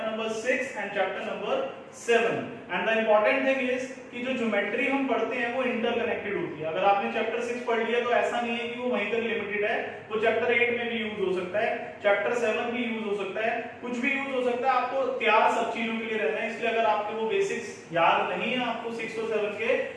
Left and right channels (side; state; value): both; identical; correlation 1.00